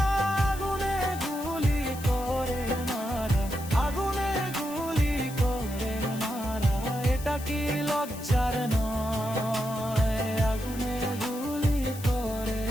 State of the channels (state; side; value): noise; left; hiss, 14 dB below the sound